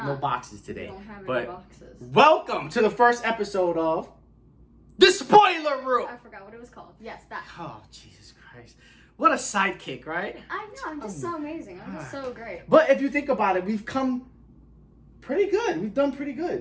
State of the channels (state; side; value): identical; both; correlation 1.00